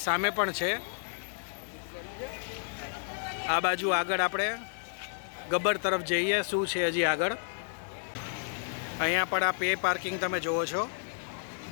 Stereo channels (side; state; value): right; silent; digital silence